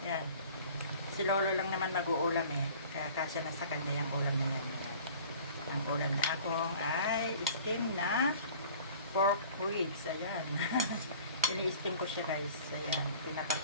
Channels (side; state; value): both; inverted; correlation -0.47